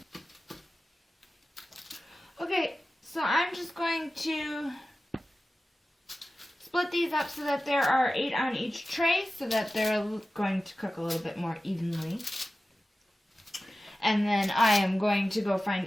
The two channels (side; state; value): both; normal; correlation 0.95